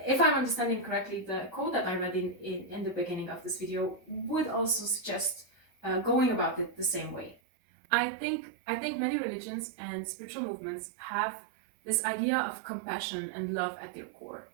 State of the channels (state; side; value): drops out; left; at 7.4 s